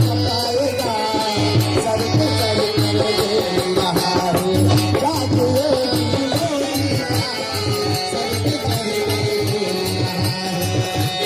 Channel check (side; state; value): both; identical; correlation 1.00